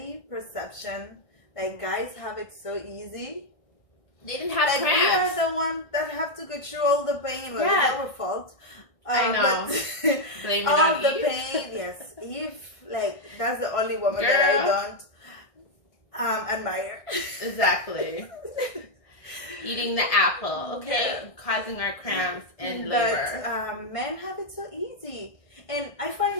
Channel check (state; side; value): late; right; 1.6 ms